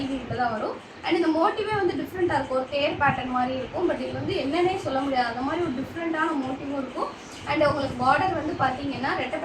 வீட்டில் தான் வரும். அண்ட் இந்த மோட்டிவே வந்து டிஃப்ரெண்ட்டாக இருக்கும். ஒரு தேர் பேட்டர்ன் மாதிரி இருக்கும். பட் இது வந்து என்னன்னே சொல்ல முடியாது, அந்த மாதிரி ஒரு டிஃப்ரெண்ட்டான மோட்டிவும் இருக்கும். அண்ட் உங்களுக்கு பார்டர் வந்து பார்த்தீங்கன்னா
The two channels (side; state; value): both; identical; correlation 1.00